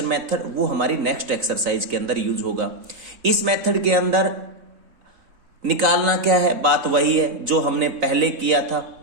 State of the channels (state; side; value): late; left; 3.9 ms